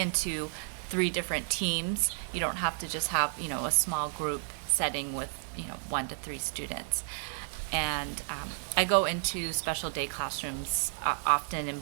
3 different teams. You don't have to just have, a small group setting with, 1 to 3 students. And I go into special day classrooms often in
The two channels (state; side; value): silent; left; 57 dB below the other